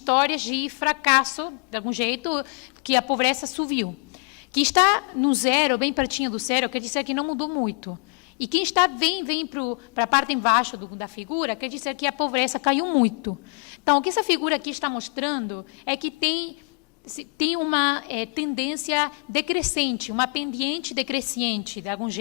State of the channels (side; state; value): right; quieter; 38.3 dB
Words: de fracasso, de algum jeito, que a pobreza subiu. Quem está no zero, bem pertinho do zero, quer dizer que não mudou muito. E quem está vem para a parte embaixo da figura, quer dizer que a pobreza caiu muito. Então, o que essa figura aqui está mostrando é que tem uma tendência decrescente, uma pendiente decrescente, de algum